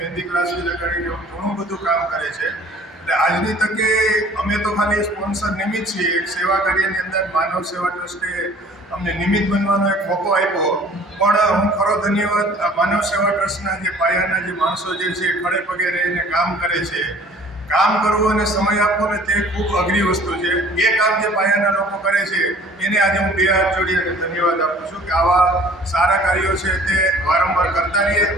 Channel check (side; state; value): both; normal; correlation 0.51